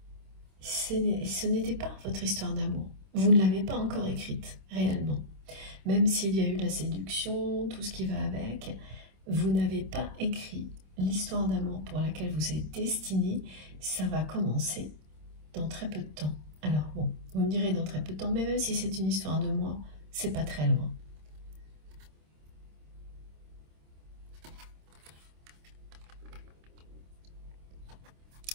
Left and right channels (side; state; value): left; late; 26 ms